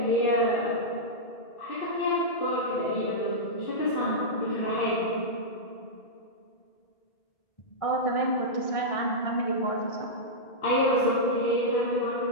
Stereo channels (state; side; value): late; right; 1.6 ms